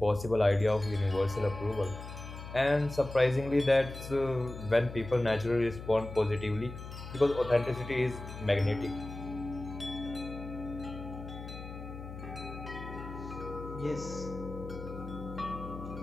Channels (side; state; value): left; noise; hum, 11 dB below the sound